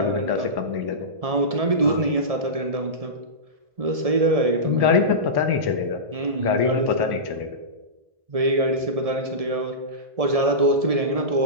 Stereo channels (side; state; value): left; late; 1.7 ms